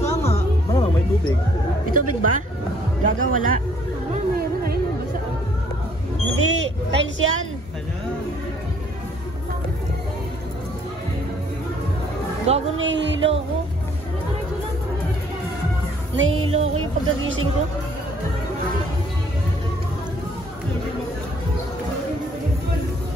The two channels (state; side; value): normal; both; correlation 0.61